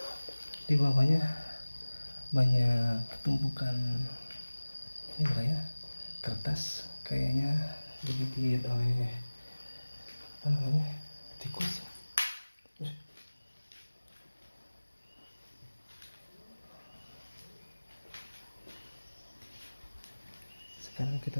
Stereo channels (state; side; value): inverted; both; correlation -1.00